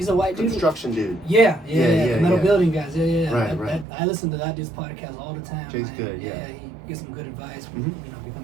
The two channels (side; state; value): left; drops out; at 3.9 s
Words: a white dude. Construction dude. Yeah. Metal building guys. Yeah. Right. I listen to that dude's podcast all the time. Jay's good. Yeah. He gives some good advice. Mm-hmm. You know,